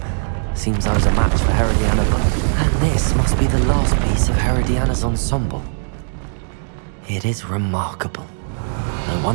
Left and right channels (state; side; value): silent; left; 60 dB below the other